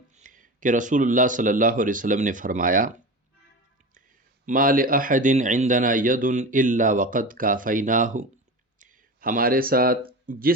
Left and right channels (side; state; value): both; normal; correlation 0.28